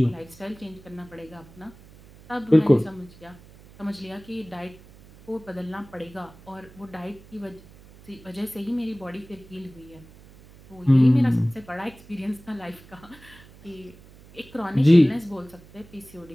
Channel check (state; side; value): noise; right; hum, 23 dB below the sound